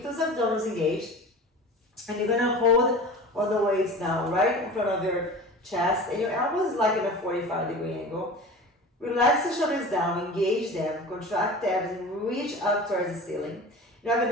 those abdominals engaged. And you're gonna hold all the weights down right in front of your chest. And your elbows like in a 45-degree angle. Relax the shoulders down, engage them, contract the abs and reach up towards the ceiling. You're now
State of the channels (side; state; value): both; normal; correlation 0.36